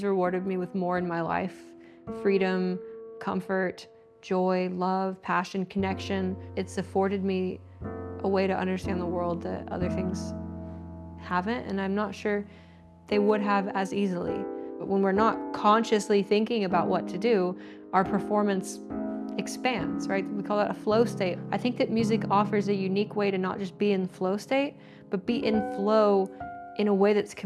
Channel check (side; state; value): both; identical; correlation 1.00